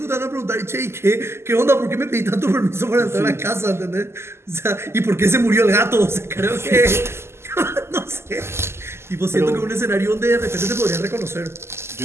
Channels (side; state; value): left; late; 0.12 ms